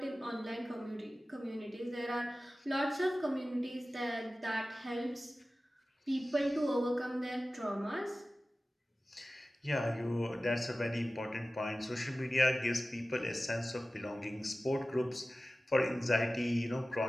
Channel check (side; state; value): both; normal; correlation 0.96